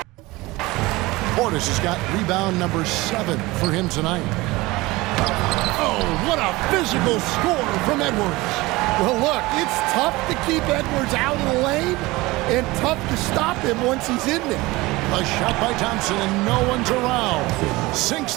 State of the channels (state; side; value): quieter; left; 21.0 dB